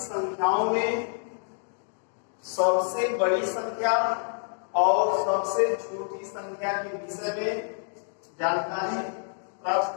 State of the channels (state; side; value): silent; right; digital silence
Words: संख्याओं में सबसे बड़ी संख्या और सबसे छोटी संख्या के विषय में जानकारी प्राप्त